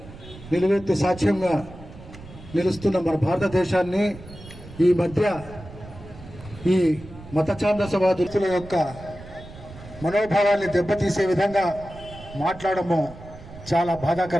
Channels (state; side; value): noise; right; rumble, 17 dB below the sound